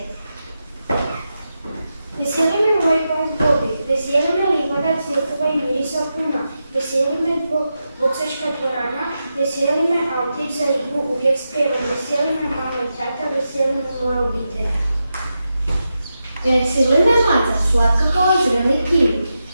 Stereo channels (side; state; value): both; inverted; correlation -0.89